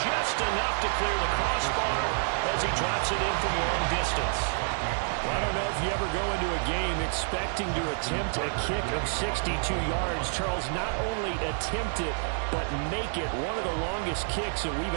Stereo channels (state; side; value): silent; left; digital silence